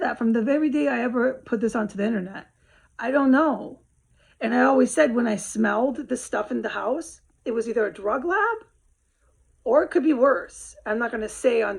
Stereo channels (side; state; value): both; identical; correlation 1.00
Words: that from the very day I ever put this onto the internet. I don't know. And I always said when I smelled the stuff in the house, it was either a drug lab or it could be worse. I'm not going to say on